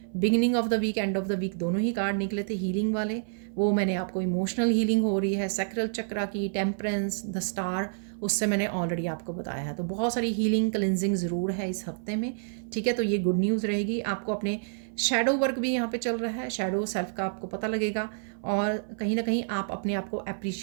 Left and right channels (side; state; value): left; silent; 59 dB below the other